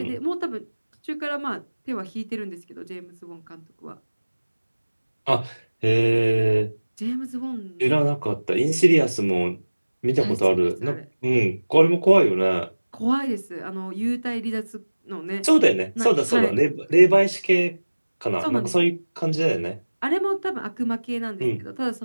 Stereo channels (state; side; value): inverted; both; correlation -1.00